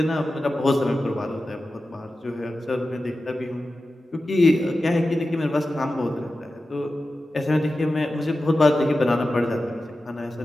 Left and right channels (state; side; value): normal; both; correlation 0.93